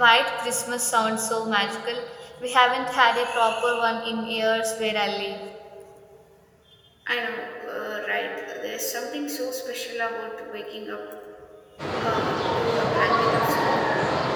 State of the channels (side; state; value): both; identical; correlation 1.00